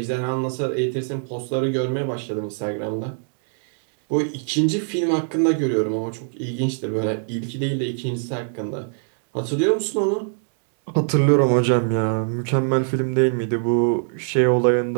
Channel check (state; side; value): silent; left; 64 dB below the other